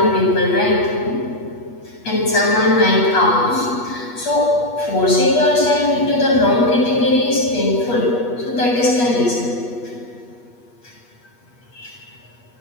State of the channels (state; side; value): late; right; 8.3 ms